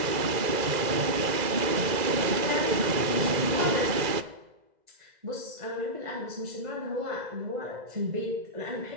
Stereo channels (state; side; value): late; left; 2.0 ms